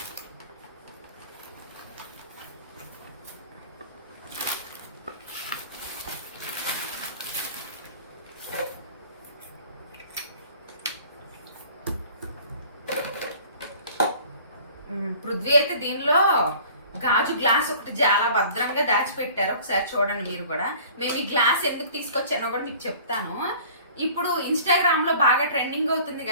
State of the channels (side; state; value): both; inverted; correlation -0.48